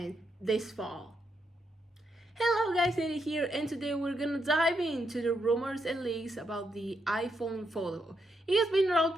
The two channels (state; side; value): normal; both; correlation 0.80